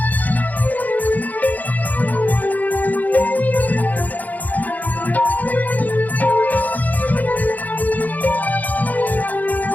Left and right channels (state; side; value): late; right; 0.080 ms